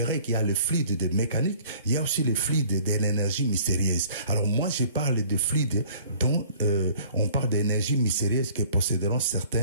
qu'il y a le fluide de mécanique, il y a aussi le fluide de l'énergie mystérieuse. Alors, moi, je parle de fluide dont on parle d'énergie mystérieuse que posséderont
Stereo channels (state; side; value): inverted; both; correlation -0.53